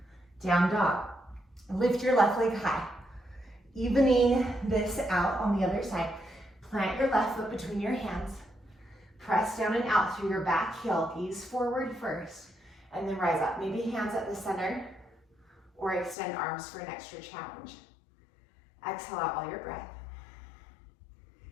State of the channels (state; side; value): drops out; right; at 16.2 s